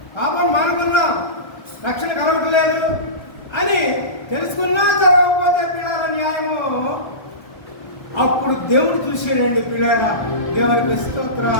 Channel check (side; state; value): right; late; 1.3 ms